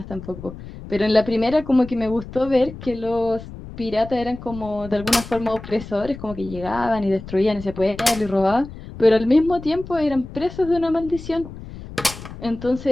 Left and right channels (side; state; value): left; noise; rumble, 14 dB below the sound